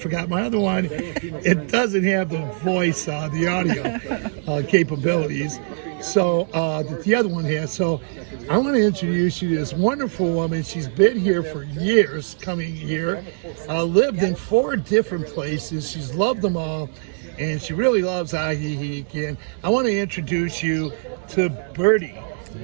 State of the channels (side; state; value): left; silent; digital silence